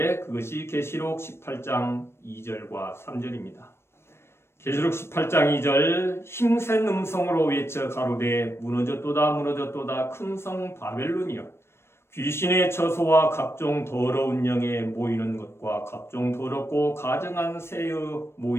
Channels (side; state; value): right; late; 0.12 ms